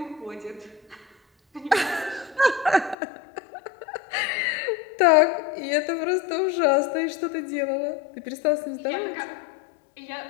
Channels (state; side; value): drops out; right; at 3.0 s